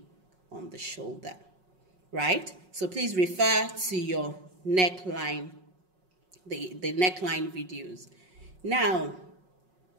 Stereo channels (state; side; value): late; left; 5.4 ms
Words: on the shoulder, right? So please refer to your neckline, the neckline videos. Now,